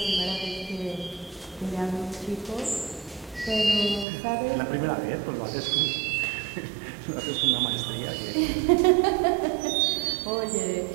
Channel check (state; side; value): drops out; left; at 4.0 s